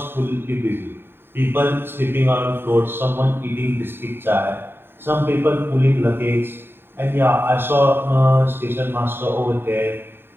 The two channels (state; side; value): late; left; 0.11 ms